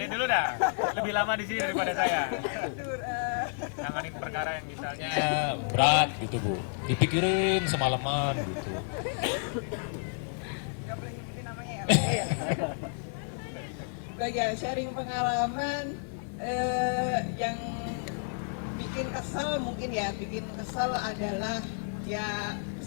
dulu dah, lebih lama di sini daripada saya. Nanganin perkara yang misalnya berat gitu Bu, dipikirin semalaman gitu. Nggak boleh nyebutin namanya ya. Baik ya, sharing pengalaman yang bikin kesel mungkin ya, bikin kesel adalah ya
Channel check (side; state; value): right; silent; 57 dB below the other